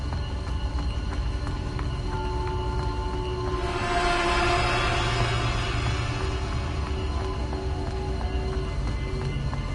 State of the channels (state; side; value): identical; both; correlation 1.00